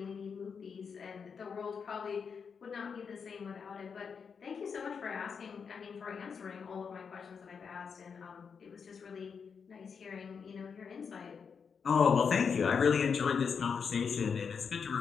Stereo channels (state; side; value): quieter; right; 6.2 dB